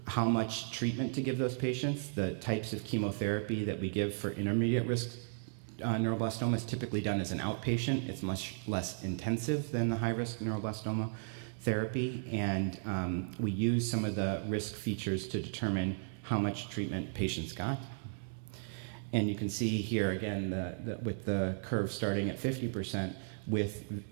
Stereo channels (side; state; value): left; silent; digital silence